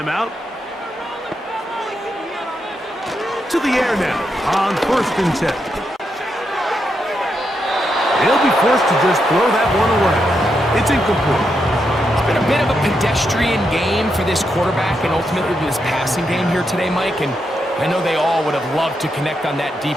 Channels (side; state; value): both; normal; correlation 0.83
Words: To the air now on 1st and 10. He'll be forced to just throw that one away. It's incomplete. It's been a bit of a pedestrian game for this quarterback and ultimately this passing game here today, Mike. And I know they all would have loved to connect on that deep